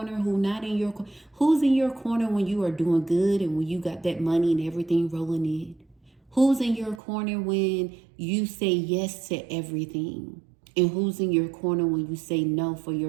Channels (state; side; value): drops out; left; at 7.0 s